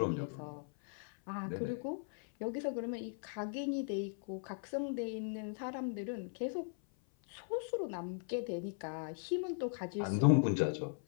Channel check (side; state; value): right; silent; 52 dB below the other